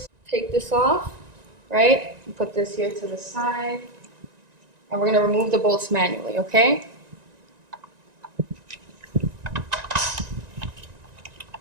take this off, right? And put this here to the side. And we're going to remove the bolts manually, okay?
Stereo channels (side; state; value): left; late; 1.9 ms